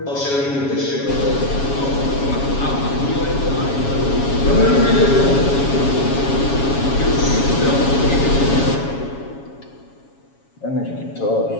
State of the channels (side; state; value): right; late; 7.2 ms